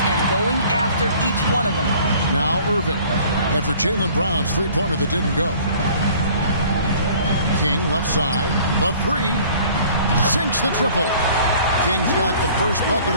and going after each one of them. Now Irving, after Jaylen Brown's three-pointer that didn't go. King left side, the three, sinks the triple. King's got the first bucket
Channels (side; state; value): both; inverted; correlation -0.52